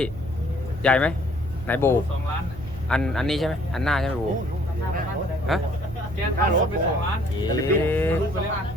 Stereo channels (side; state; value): right; noise; rumble, 14 dB below the sound